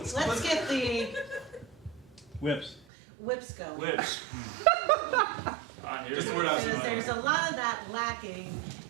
get the Whips. whips going. Whips. Just the word I was Because saying. there's a lot of that lacking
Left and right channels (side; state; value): left; drops out; at 2.9 s